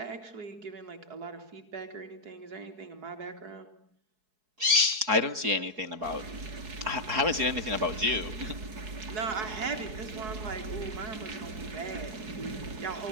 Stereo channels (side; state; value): left; late; 4.7 ms